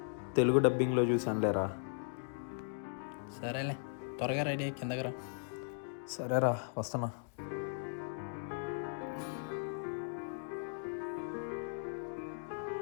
తెలుగు డబ్బింగ్లో చూసానులేరా. సరేలే, త్వరగా రెడీ అయ్యి కిందకి రా. సరేరా, వస్తున్నా.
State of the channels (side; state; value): right; silent; digital silence